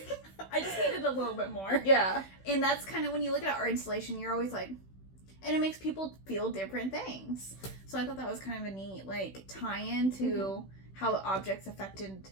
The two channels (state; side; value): late; right; 16 ms